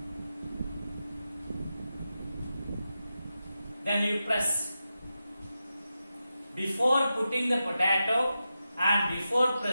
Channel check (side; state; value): both; inverted; correlation -0.90